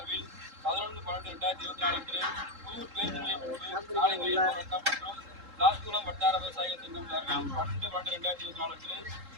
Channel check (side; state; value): left; late; 3.7 ms